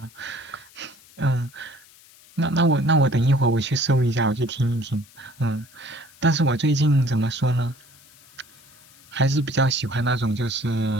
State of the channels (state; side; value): noise; left; hiss, 25 dB below the sound